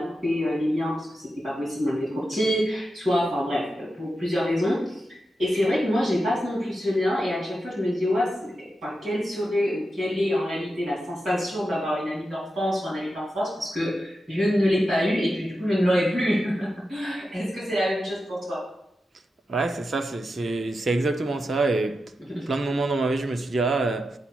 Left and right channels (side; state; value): both; normal; correlation 0.89